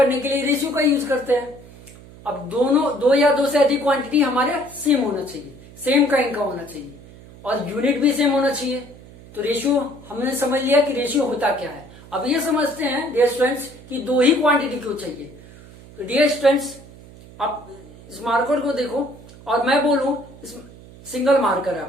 के लिए रेशियो का यूज करते हैं. अब दो से अधिक क्वांटिटी हमारे सेम होना चाहिए, सेम काइंड का होना चाहिए और यूनिट भी सेम होना चाहिए. तो रेशियो हमने समझ लिया कि रेशियो होता क्या है. अब ये समझते हैं डियर स्टूडेंट्स कि दो ही क्वांटिटी क्यों चाहिए. तो डियर स्टूडेंट्स, आप इस मार्कर को देखो और मैं बोलूं, इस सिंगल मार्कर है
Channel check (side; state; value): right; noise; hum, 20 dB below the sound